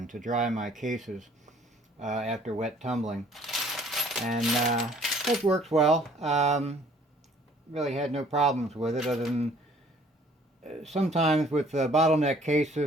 to dry my cases after wet tumbling, and it works well. Really had no problems with it, other than sometimes with bottleneck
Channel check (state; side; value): normal; both; correlation 0.57